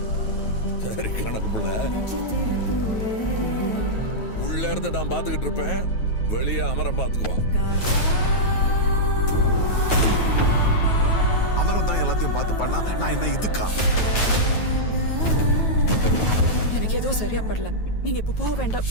சரி கணக்கு புள்ள. உள்ள இருந்து நான் பாத்துக்கிட்டு இருப்பேன், வெளியே அமரம் பாத்துக்குவான். அமரம் தான் எல்லாத்தையும் பார்த்து பண்ணா நான் என்ன இதுக்கா? எனக்கு ஏதோ சரியா படல, நீங்க இப்ப போக வேண்டாம்.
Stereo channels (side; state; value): right; late; 9.3 ms